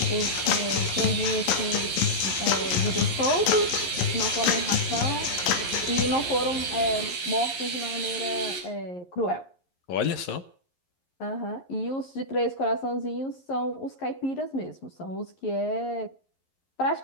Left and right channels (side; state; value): right; late; 11 ms